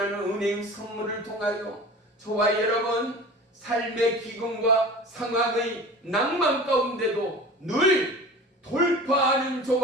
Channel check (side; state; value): both; normal; correlation 0.38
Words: 은혜의 선물을 통하여 저와 여러분 삶의 기근과 상황의 낭만 가운데도 늘 돌파하는